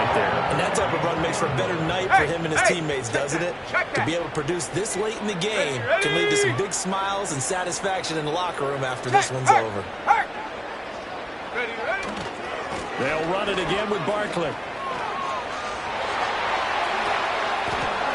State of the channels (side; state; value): both; identical; correlation 1.00